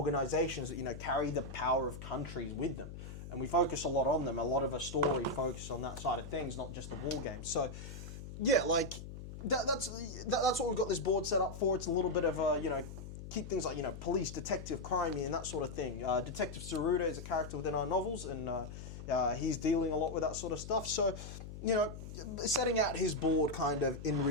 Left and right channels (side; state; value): left; noise; hum, 11 dB below the sound